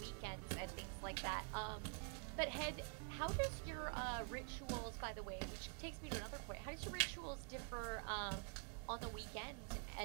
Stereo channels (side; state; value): left; quieter; 34.9 dB